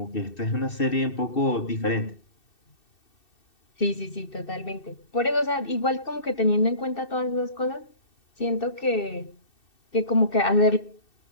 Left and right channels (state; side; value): late; right; 2.6 ms